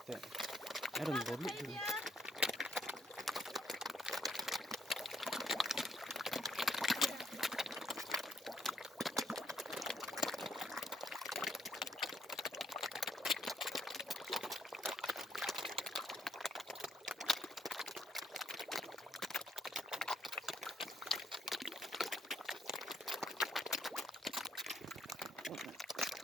tệ. Em đừng vốn bị thương.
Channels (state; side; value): normal; both; correlation 0.73